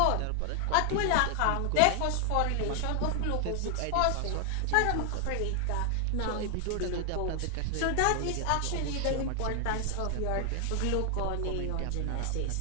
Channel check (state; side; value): different; both; correlation 0.00